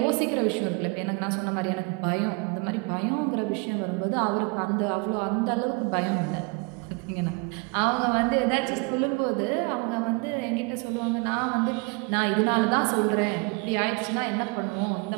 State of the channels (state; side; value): quieter; left; 30.6 dB